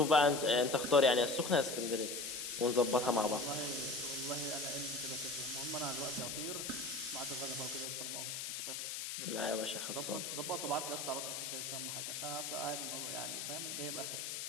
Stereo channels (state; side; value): noise; left; hiss, 4 dB below the sound